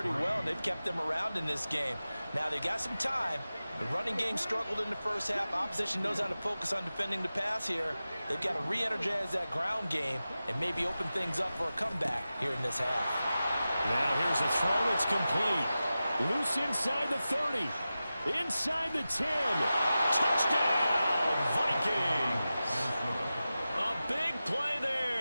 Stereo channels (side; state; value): both; inverted; correlation -0.94